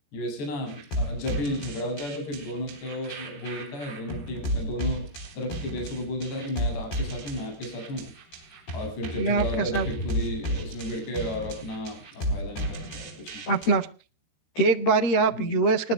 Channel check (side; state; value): right; late; 13 ms